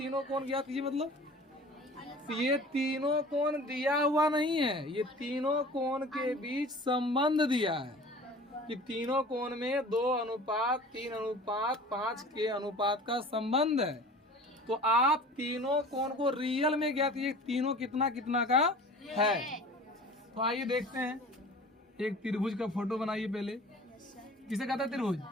कोण ज्ञात कीजिए मतलब? तो ये तीनों कोण दिया हुआ नहीं है, ये तीनों कोण के बीच संबंध दिया है कि तीनों कोण में 2:3:5 के अनुपात का संबंध है। तो आप तीनों कोण को रियल में ज्ञात कीजिए, तीनों कितना कितना का है। तो आइए देखते हैं, एक त्रिभुज का फोटो बनाइए पहले। किसे कहता है त्रिभुज?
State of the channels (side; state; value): both; normal; correlation 0.42